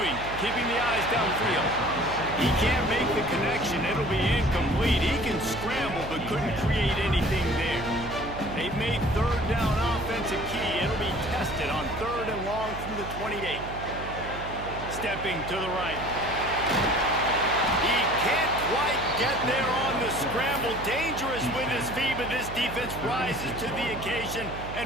keeping the eyes downfield. He can't make the connection. It'll be incomplete. He can scramble, but couldn't create anything there. They've made third down offense a key. It'll be tested on 3rd and long from the 28. Stepping to the right. He can't quite get there on the scramble. Dangerous with his feet, but this defense rises to the occasion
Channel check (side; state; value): right; noise; hum, 10 dB below the sound